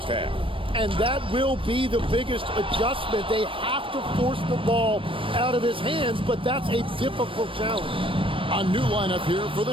half. And that will be the biggest adjustment. They have to force the ball out of his hands, but that's a difficult challenge. A new lineup here for the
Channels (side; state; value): left; late; 0.25 ms